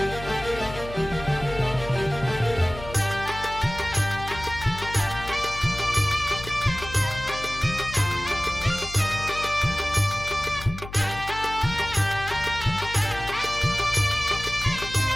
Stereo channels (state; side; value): noise; left; hum, 12 dB below the sound